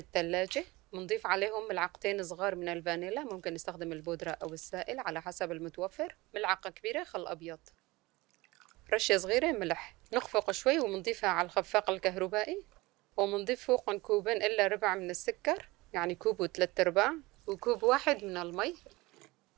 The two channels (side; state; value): left; quieter; 21.5 dB